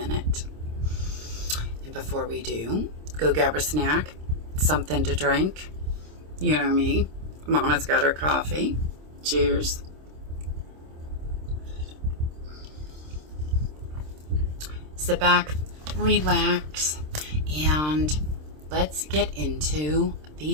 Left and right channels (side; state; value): left; late; 26 ms